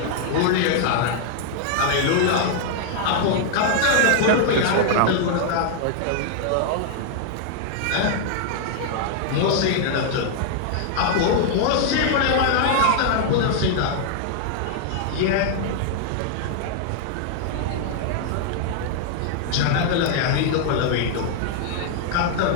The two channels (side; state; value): both; different; correlation -0.01